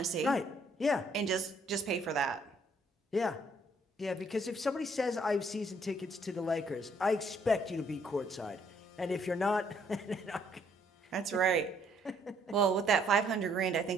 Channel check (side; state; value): both; normal; correlation 0.66